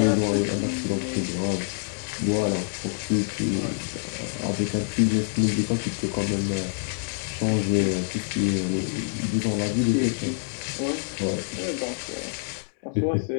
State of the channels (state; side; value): silent; right; digital silence